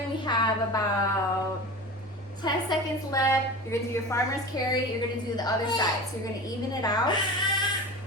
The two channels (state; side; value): normal; both; correlation 0.32